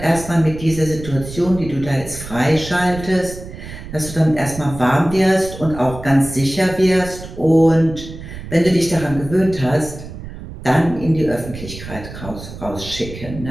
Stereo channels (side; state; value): right; noise; rumble, 12 dB below the sound